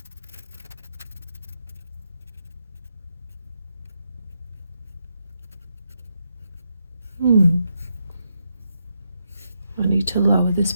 I need to lower this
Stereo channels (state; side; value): inverted; both; correlation -0.82